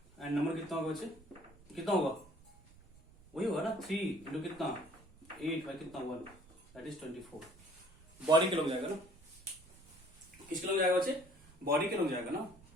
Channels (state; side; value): noise; right; rumble, 25 dB below the sound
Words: एंड नंबर कितना होगा बच्चे, कितना होगा वही होगा ना 3 इंटू कितना 8 बाय कितना 1, दैट इज 24। बॉडी के लोग जाएगा ना, किसके लोग जाएगा बच्चे, बॉडी के लोग जाएगा ना,